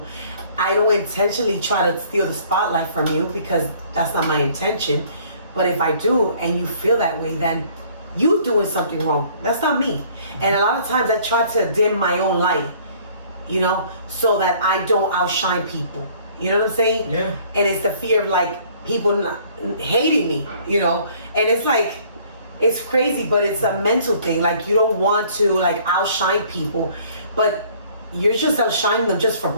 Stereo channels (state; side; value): inverted; both; correlation -0.56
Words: I don't intentionally try to steal the spotlight from you, because that's not my intention. But if I do, and you feel that way, then you doing something wrong. That's not me. And a lot of times I try to dim my own light, so that I don't outshine people. You know what I'm saying? Yeah. And it's the fear of people hating me, and it's crazy, but it's a mental thing. You don't want to outshine people, but you're just outshining them just for